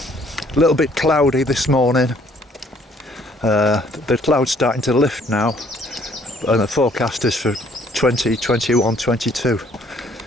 A little bit cloudy this morning. The clouds starting to lift now, and the forecast is for 20, 21, 22.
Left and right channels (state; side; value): normal; both; correlation 0.62